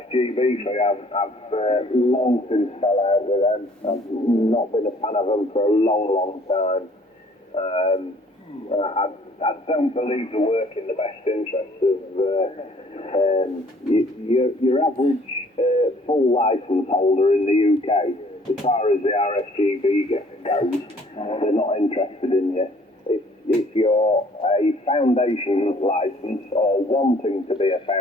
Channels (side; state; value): both; normal; correlation 0.58